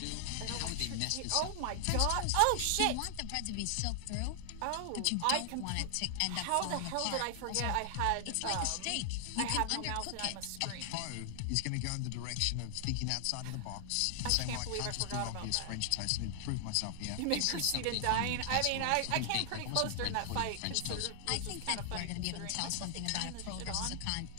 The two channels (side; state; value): both; different; correlation 0.00